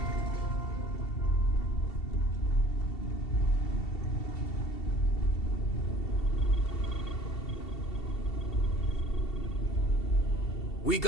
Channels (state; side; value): late; right; 2.7 ms